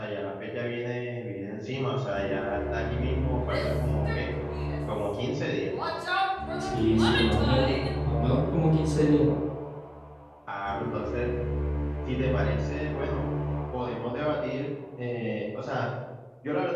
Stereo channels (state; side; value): identical; both; correlation 1.00